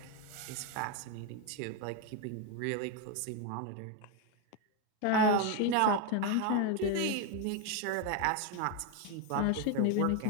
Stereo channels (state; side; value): different; both; correlation 0.02